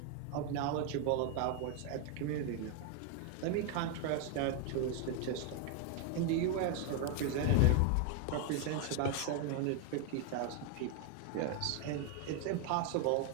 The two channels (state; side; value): different; both; correlation 0.01